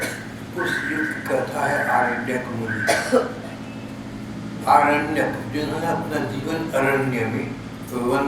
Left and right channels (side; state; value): both; identical; correlation 1.00